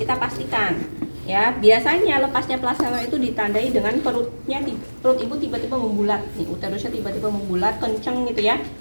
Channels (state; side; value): inverted; both; correlation -1.00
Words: pastikan ya. Biasanya lepasnya plasenta itu ditandai dengan perut ibu tiba-tiba membulat nih, uterusnya tiba-tiba membulat kenceng gitu ya,